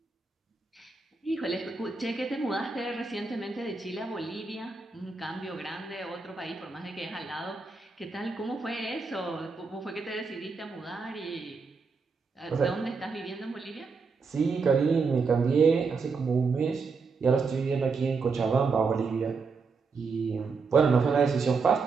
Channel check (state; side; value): quieter; left; 4.7 dB